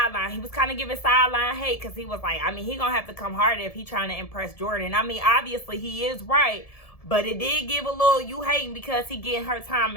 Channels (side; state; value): right; late; 1.7 ms